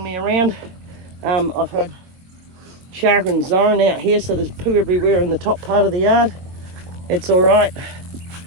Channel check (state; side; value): late; left; 22 ms